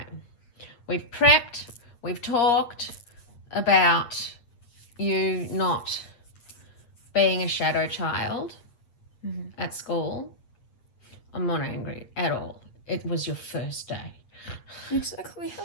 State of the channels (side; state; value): right; late; 8.5 ms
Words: We've prepped, we've talked about you not being a shadow child at school. I'm not angry at all. It was your first day. Exactly.